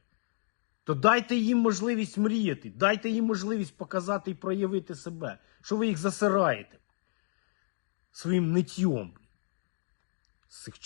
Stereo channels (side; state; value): right; silent; digital silence